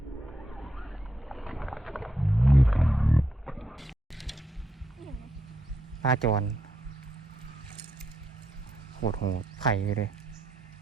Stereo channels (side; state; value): both; normal; correlation 0.80